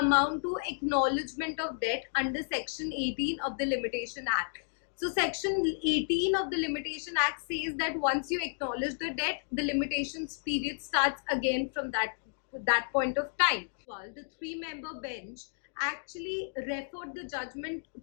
amount to acknowledgement of debt under Section 18 of the Limitation Act. So Section 18 of the Limitation Act says that once you acknowledge the debt, the limitations period starts again from that point of time. Well, the 3-member bench actually referred the judgment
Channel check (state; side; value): silent; right; digital silence